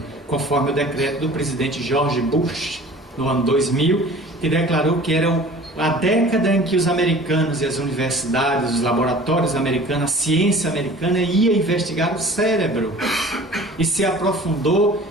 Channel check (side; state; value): both; normal; correlation 0.44